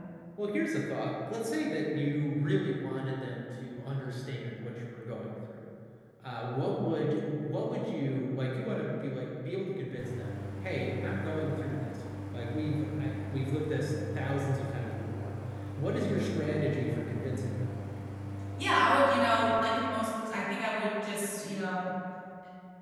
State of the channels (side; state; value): both; identical; correlation 1.00